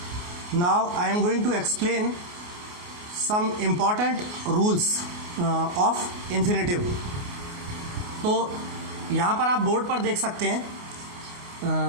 now I am going to explain some important rules of infinitive. तो यहाँ पर आप बोर्ड पर देख सकते हैं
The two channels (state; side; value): late; left; 28 ms